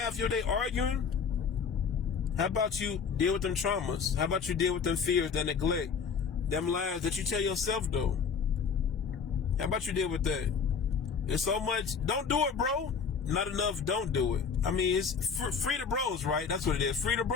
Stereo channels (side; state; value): right; quieter; 6.1 dB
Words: your day arguing? How about you deal with them traumas? How about you deal with them fears, that neglect, them lies that you tell yourself, though? How about you deal with that? There's so much. Don't do it, bro. Not enough, don't do it. I mean, it's free the bros, right? That's what it is. Free the